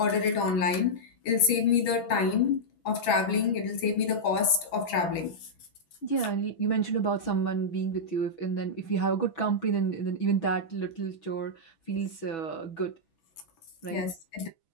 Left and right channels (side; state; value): right; late; 6.0 ms